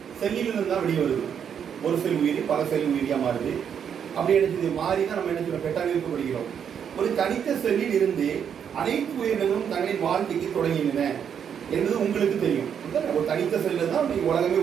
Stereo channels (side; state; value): left; quieter; 8.0 dB